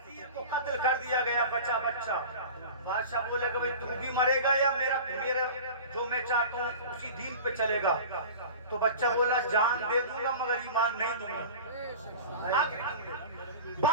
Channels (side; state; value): both; inverted; correlation -0.36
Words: کو قتل کر دیا گیا بچہ بچہ۔ بادشاہ بولے کہ تو بھی مرے گا یا میرا جو میں چاہتا ہوں اسی دین پہ چلے گا؟ تو بچہ بولا جان دے دوں گا مگر ایمان نہیں دوں گا۔